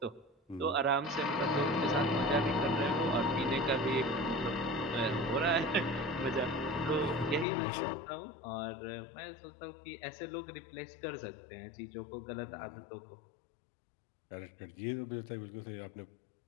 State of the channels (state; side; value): drops out; right; at 7.5 s